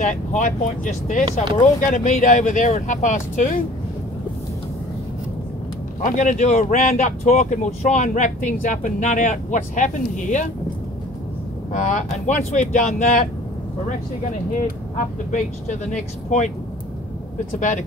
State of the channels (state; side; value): normal; both; correlation 0.49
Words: high point just there. So we're all going to meet over there at 2:30. I'm going to do a roundup talk and we'll try and wrap things up and nut out what's happened here. And once we've done that, we're actually going to head up the beach to the next point that's about 1